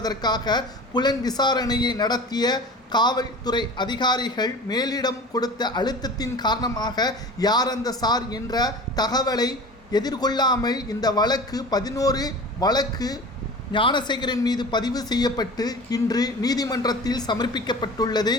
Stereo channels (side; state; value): both; normal; correlation 0.37